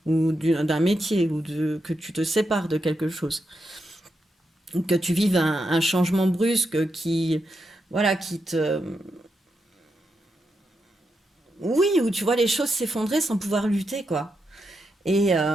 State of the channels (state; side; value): normal; both; correlation 0.85